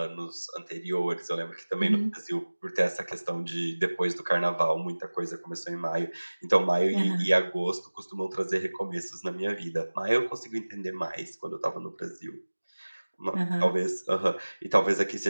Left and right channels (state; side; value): inverted; both; correlation -1.00